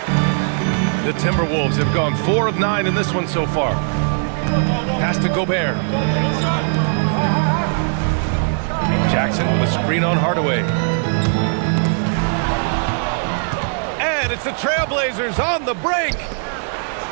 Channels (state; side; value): silent; left; 62 dB below the other